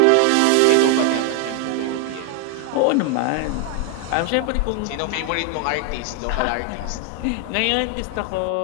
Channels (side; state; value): both; different; correlation 0.00